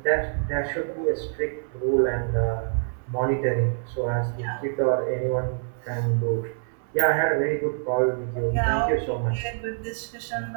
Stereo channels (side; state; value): left; silent; digital silence